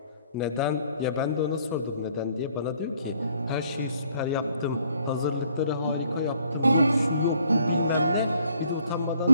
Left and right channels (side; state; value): both; inverted; correlation -0.63